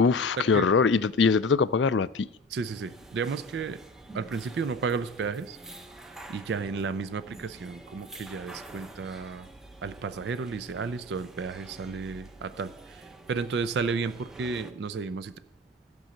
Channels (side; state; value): both; normal; correlation 0.34